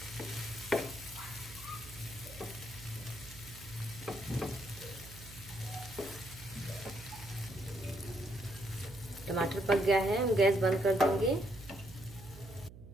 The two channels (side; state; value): right; noise; hum, 16 dB below the sound